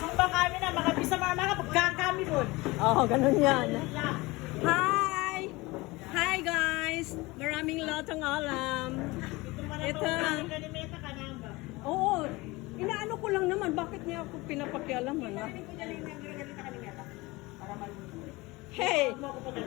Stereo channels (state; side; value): quieter; right; 22.3 dB